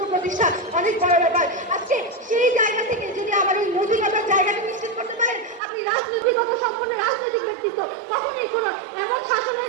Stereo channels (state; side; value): drops out; left; at 5.6 s